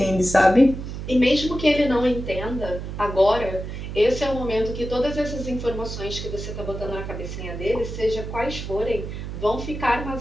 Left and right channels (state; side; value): noise; right; hum, 7 dB below the sound